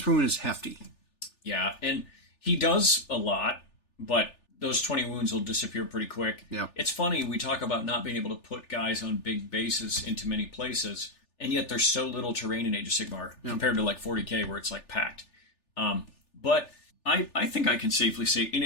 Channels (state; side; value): late; right; 3.4 ms